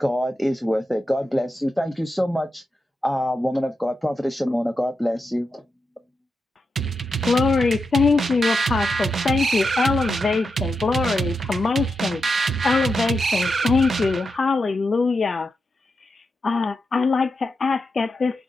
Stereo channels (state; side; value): normal; both; correlation 0.87